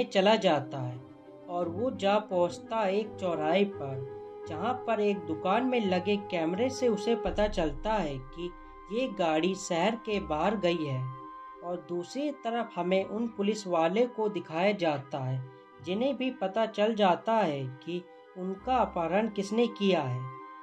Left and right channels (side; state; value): both; identical; correlation 1.00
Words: चला जाता है और वो जा पहुंचता है एक चौराहे पर, जहां पर एक दुकान में लगे कैमरे से उसे पता चलता है कि ये गाड़ी शहर के बाहर गई है। और दूसरी तरफ हमें उन पुलिस वाले को दिखाया जाता है जिन्हें भी पता चल जाता है कि उनका अपहरण किसने किया है।